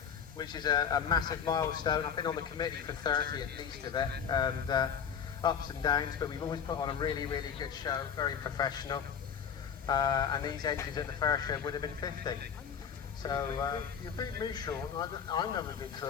which is a massive milestone. I've been on the committee for 30 at least of it, and ups and downs, but we've always put on a really, really good show, very professional. And these engines at the first show would have been 50. So you beat me, Sean. I never did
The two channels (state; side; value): quieter; right; 7.4 dB